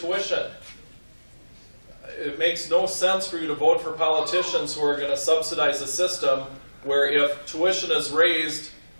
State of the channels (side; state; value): both; inverted; correlation -1.00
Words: It makes no sense for you to vote for politicians who are going to subsidize a system where if tuition is raised,